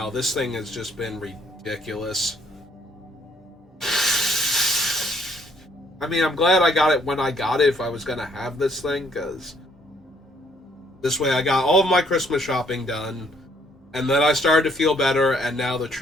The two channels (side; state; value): both; normal; correlation 0.65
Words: This thing has just been ridiculous. I mean, I'm glad I got it when I got it if I was going to have this thing, because this way I got all of my Christmas shopping done, and then I started to feel better, and now the